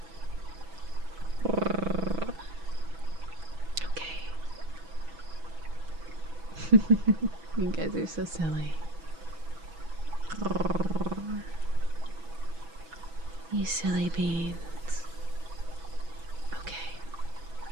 Okay. You guys are so silly. You silly beans. Okay,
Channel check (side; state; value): left; late; 6.1 ms